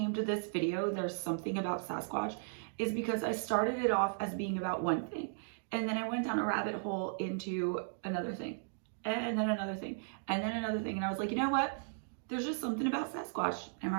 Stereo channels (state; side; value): silent; left; digital silence